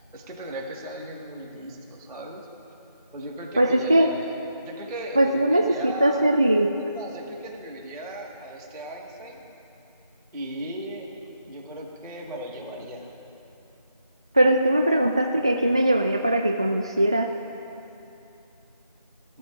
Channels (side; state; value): both; inverted; correlation -0.82